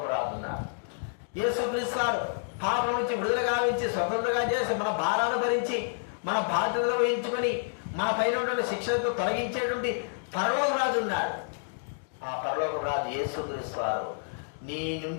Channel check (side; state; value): right; silent; digital silence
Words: రాజున్నారు యేసుక్రీస్తు వారు పాపం నుంచి విడుదల గావించి స్వతంత్రంగా చేసి మన భారాన్ని భరించి మన బాధ్యతలు వహించుకొని మన పైన ఉన్నటువంటి శిక్షణతో తొలగించేటువంటి పరలోక రాజు ఉన్నాడు. ఆ పరలోక రాజు యేసుక్రీస్తు వారు నీ